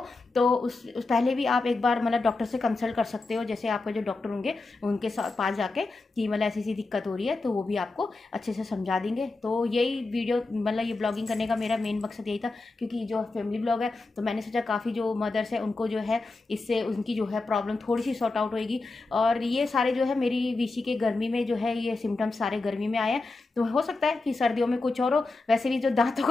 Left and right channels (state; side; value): quieter; right; 3.4 dB